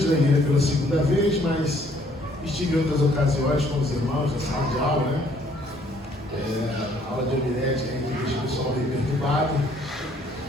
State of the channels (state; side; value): normal; both; correlation 0.63